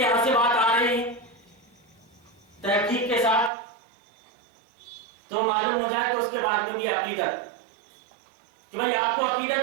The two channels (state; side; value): drops out; left; at 3.5 s